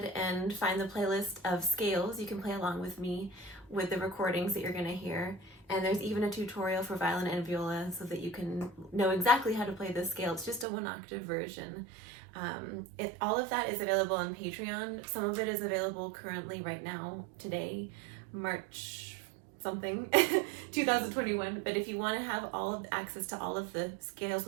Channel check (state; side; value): drops out; left; at 10.7 s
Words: and find the playlist of scales. You can play along with me with the recordings that you're going to hear, and there's even a tutorial for violin and viola so that you can know exactly how to play this scale. It's just a 1-octave version. All of that is available on Patreon. Some of it is available currently right now, today, March something 2021. But if you want to have all of access to all of the scales